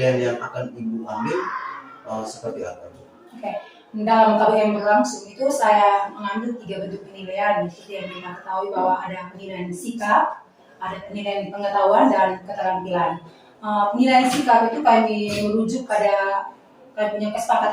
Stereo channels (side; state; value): both; identical; correlation 1.00